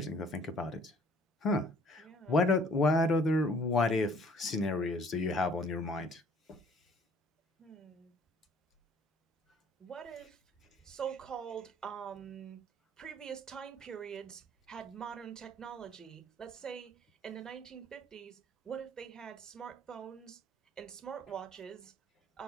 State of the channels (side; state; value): both; normal; correlation 0.57